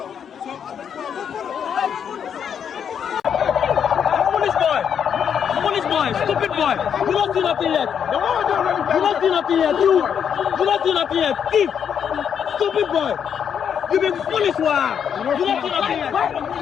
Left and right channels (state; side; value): quieter; right; 7.9 dB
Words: Police boy! Stupid boy! You don't do nothing yet! You don't do nothing yet! You don't do nothing yet! Thief! Stupid boy! You been foolish, wow! You don't do nothing yet!